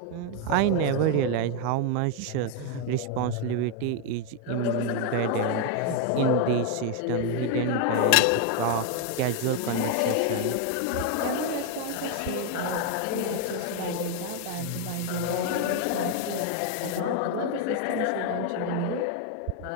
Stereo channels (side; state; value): both; different; correlation 0.01